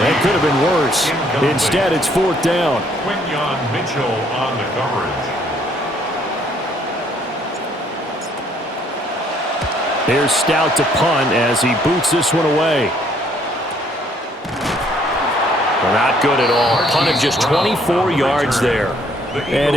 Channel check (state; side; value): normal; both; correlation 0.65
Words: That could have been worse. Instead, it's 4th down. Quinyon Mitchell on the coverage. Here's Stout to punt as he boots this one away. Not good at all. Punted just 24 yards there. And